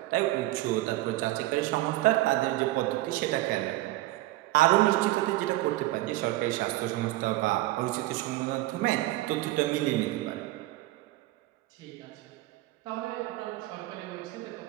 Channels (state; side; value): quieter; left; 17.3 dB